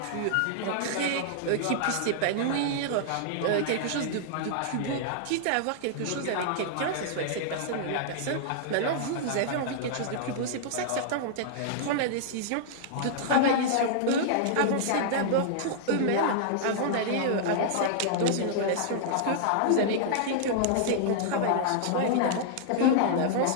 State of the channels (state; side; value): different; both; correlation -0.01